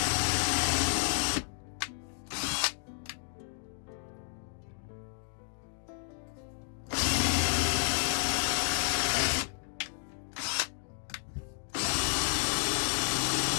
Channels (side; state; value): right; silent; digital silence